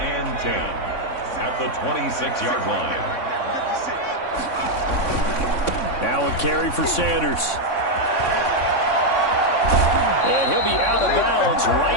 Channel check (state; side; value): late; right; 3.6 ms